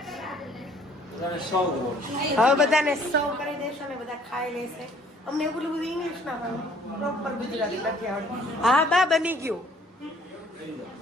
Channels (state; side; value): normal; both; correlation 0.58